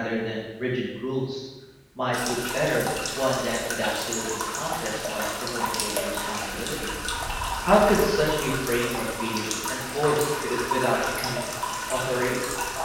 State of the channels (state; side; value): identical; both; correlation 1.00